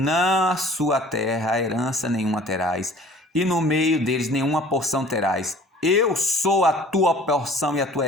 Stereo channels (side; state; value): both; normal; correlation 0.49